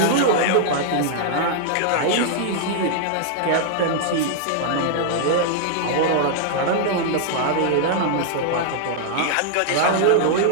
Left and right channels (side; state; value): both; different; correlation -0.01